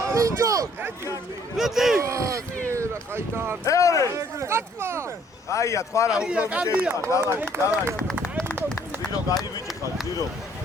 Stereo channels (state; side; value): normal; both; correlation 0.62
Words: ინჯო! მეტი! რა ხაიტარ მეორე კატმა! აია თქვა რა უფრო კარგია. დავაი ზირო გაივიჭი ხარ ზირო